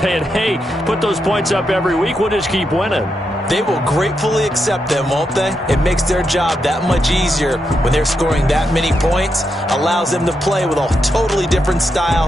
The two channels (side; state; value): both; normal; correlation 0.83